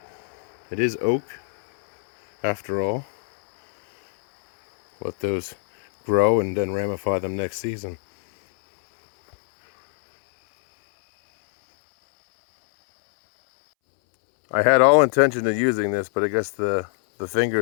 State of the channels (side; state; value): right; silent; 64 dB below the other